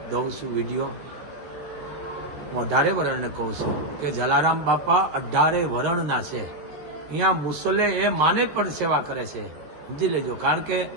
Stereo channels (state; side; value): late; left; 13 ms